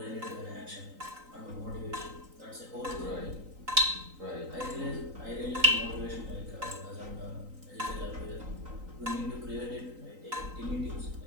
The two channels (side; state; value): left; late; 3.9 ms